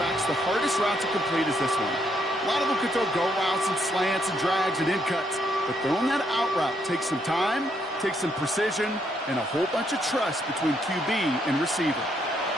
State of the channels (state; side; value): normal; both; correlation 0.74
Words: the hardest route to complete is this one. A lot of them could throw go routes and slants and drags and in cuts, but throwing that out route takes some time, takes some precision, and a whole bunch of trust between QB and receiver.